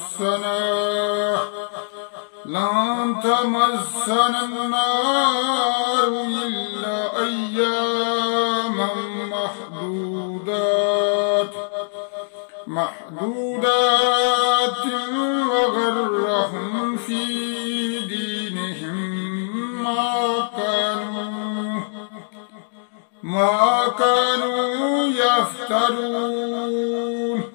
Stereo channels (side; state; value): right; silent; digital silence